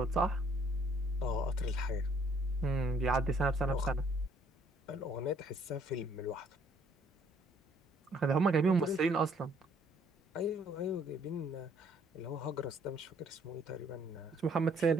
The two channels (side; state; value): both; normal; correlation 0.63